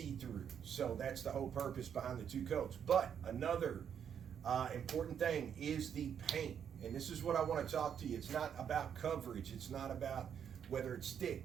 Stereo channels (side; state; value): left; quieter; 8.2 dB